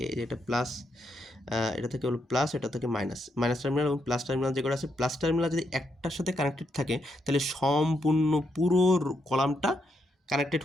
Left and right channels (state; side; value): normal; both; correlation 0.79